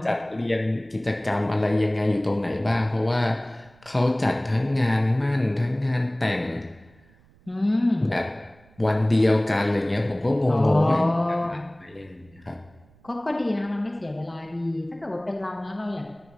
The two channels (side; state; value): right; noise; rumble, 29 dB below the sound